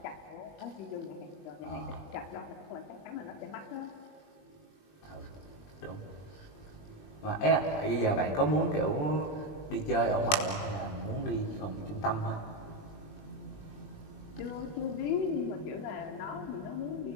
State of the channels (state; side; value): late; right; 20 ms